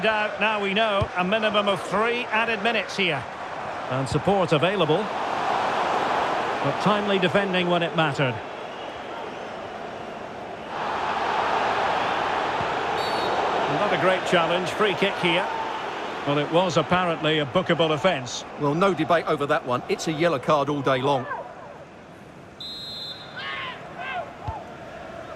out. Now we know a minimum of 3 added minutes here. And support available. But timely defending when it mattered. Not a great challenge. Free kick here. Well, it was apparently a bookable offence. Well, no debate over that one. It's a yellow card all day long.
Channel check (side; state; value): both; identical; correlation 1.00